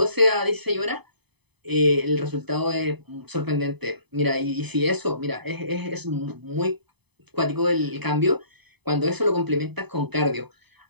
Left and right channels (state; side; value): late; left; 0.98 ms